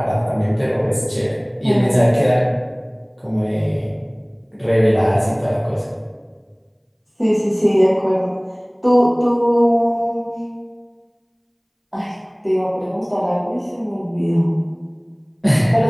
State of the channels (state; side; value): identical; both; correlation 1.00